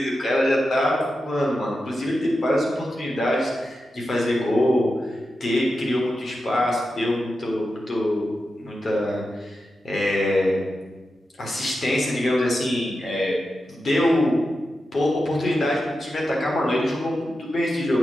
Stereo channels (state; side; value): normal; both; correlation 0.90